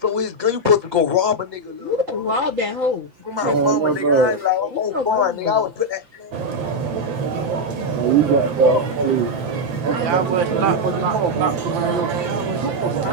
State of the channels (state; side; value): late; left; 5.9 ms